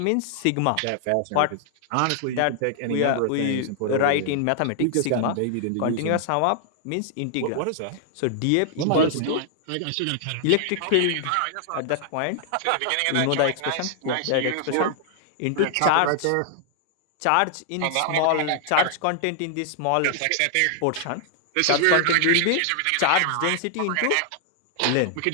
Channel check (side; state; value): both; different; correlation 0.00